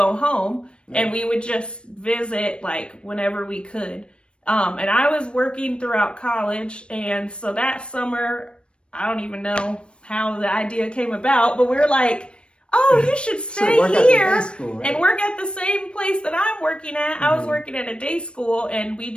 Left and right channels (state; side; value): late; right; 0.057 ms